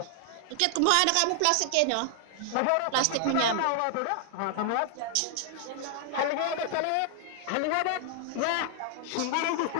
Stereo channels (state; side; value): different; both; correlation 0.00